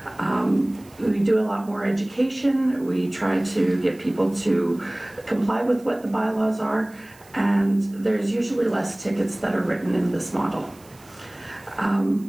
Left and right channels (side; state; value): right; noise; hiss, 26 dB below the sound